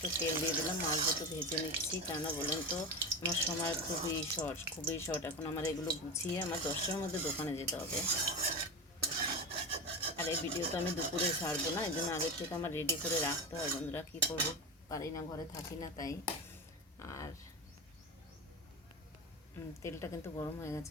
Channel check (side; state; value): both; normal; correlation 0.22